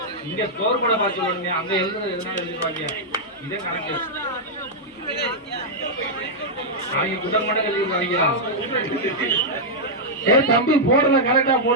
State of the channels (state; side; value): normal; both; correlation -0.06